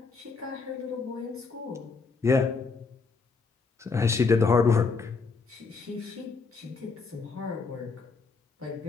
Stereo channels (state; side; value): quieter; right; 4.6 dB